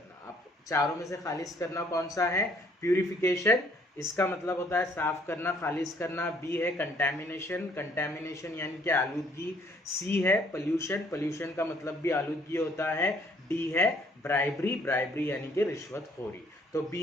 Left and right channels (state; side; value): normal; both; correlation 0.63